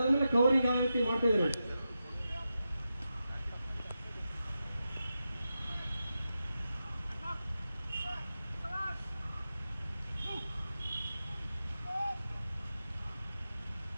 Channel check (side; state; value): both; inverted; correlation -0.90